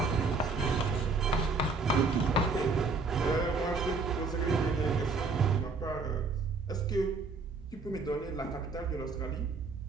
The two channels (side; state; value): left; quieter; 4.1 dB